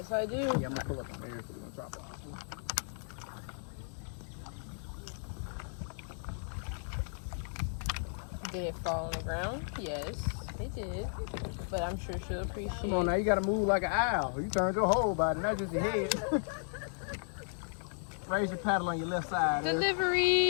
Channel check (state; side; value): silent; right; digital silence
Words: I do. Yeah, I'm not coming up on there, so we're gonna drop it off. Did it fall on the ground? Yes, it did. But I'm sure she'll appreciate it. Come on now, you gotta move like an owl. You turned your whole body, not just your head. Raise your paddle on your left side.